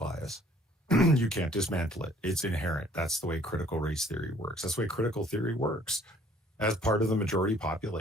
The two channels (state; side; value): normal; both; correlation 0.58